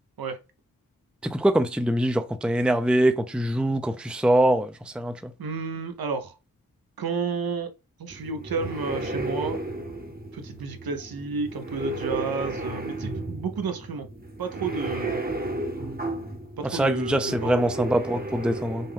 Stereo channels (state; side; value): normal; both; correlation 0.72